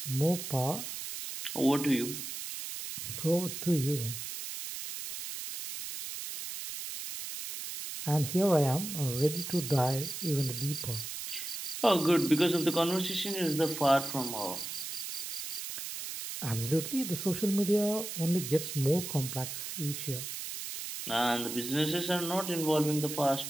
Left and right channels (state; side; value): noise; right; hiss, 7 dB below the sound